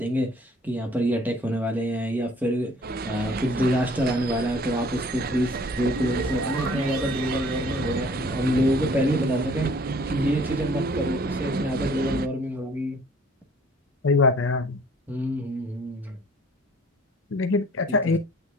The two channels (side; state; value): both; normal; correlation 0.55